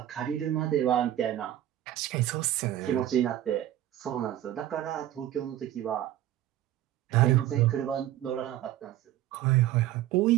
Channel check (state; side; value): quieter; left; 12.8 dB